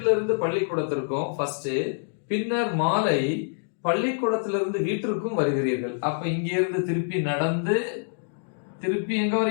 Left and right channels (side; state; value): right; silent; digital silence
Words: இருந்து பள்ளிக்கூடத்திற்கும் ஃபர்ஸ்ட், பின்னர் மாலை பள்ளிக்கூடத்திலிருந்து வீட்டிற்கும் வருகிறீர்கள். அப்ப இங்க இருந்து திருப்பி நடந்து திருப்பி எங்க